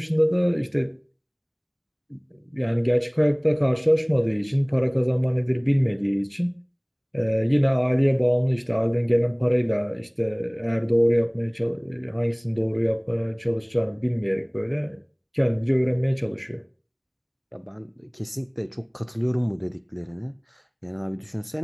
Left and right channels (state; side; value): identical; both; correlation 1.00